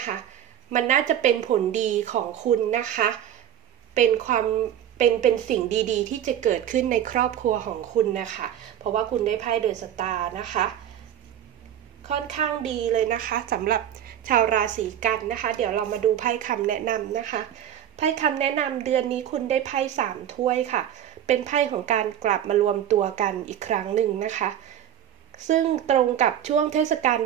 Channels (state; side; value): quieter; left; 10.4 dB